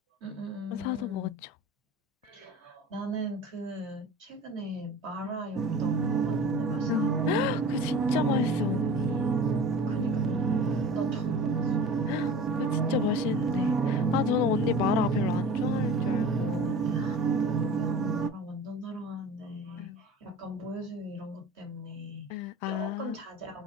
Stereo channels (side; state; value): both; normal; correlation 0.38